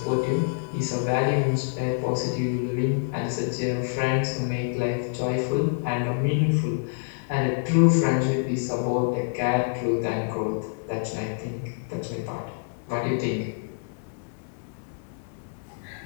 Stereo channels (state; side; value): silent; right; 60 dB below the other